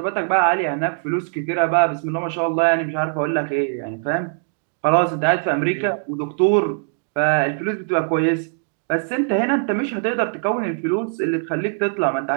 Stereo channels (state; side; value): silent; left; 65 dB below the other